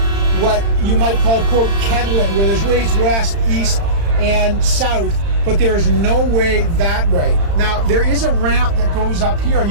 what you might call, quote, kettling, where there's ways west, east, and south, but there is no way that way. Now, there is a ramp that goes up here, and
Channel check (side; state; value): left; late; 35 ms